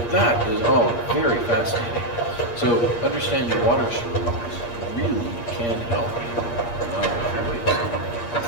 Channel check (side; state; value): right; late; 8.5 ms